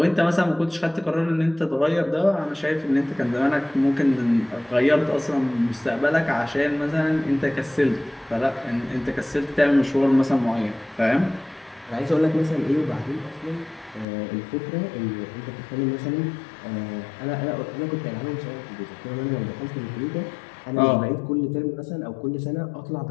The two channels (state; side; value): drops out; right; at 14.1 s